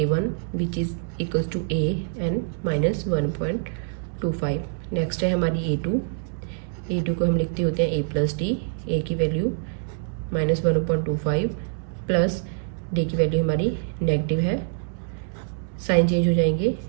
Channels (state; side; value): silent; left; digital silence